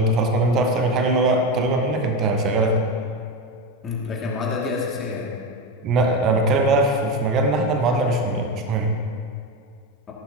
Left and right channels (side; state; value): both; normal; correlation 0.16